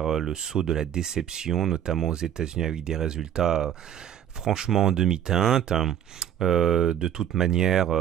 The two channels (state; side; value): quieter; left; 10.3 dB